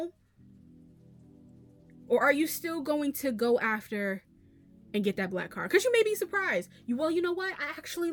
Or are you still going to go after and get that black car? Because you may be surprised. You know what? I actually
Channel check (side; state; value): both; identical; correlation 1.00